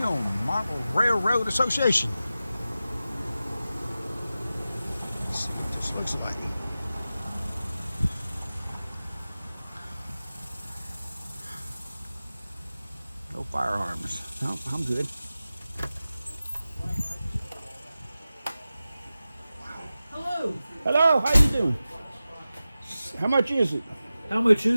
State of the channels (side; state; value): both; inverted; correlation -0.94